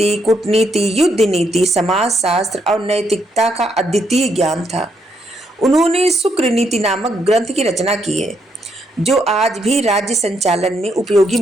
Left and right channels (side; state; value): both; normal; correlation 0.76